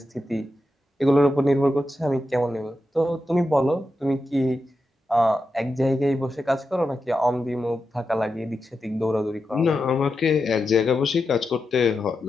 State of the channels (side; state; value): both; normal; correlation 0.89